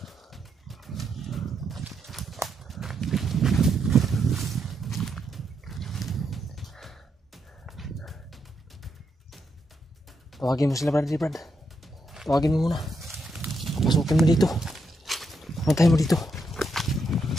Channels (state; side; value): normal; both; correlation 0.80